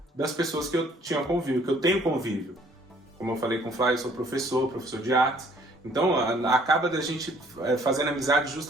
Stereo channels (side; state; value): both; normal; correlation 0.60